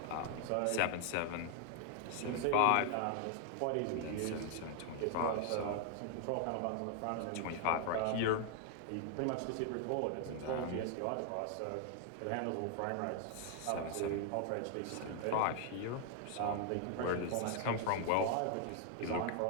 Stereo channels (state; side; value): different; both; correlation 0.00